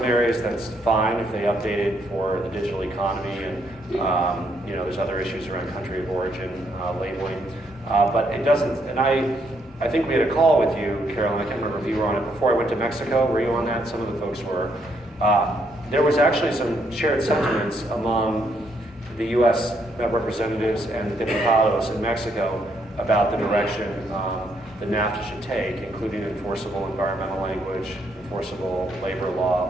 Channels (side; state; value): both; normal; correlation 0.74